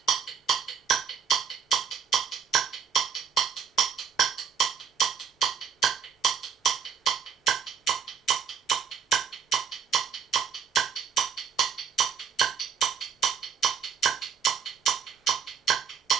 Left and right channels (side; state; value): left; quieter; 7.4 dB